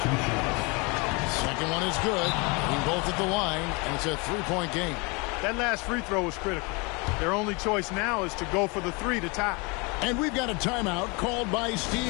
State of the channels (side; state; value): right; quieter; 29.0 dB